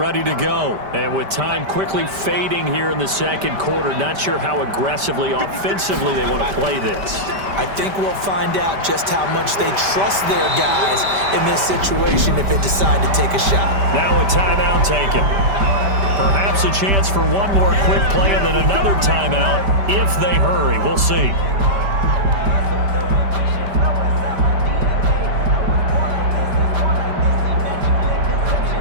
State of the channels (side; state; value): left; late; 5.1 ms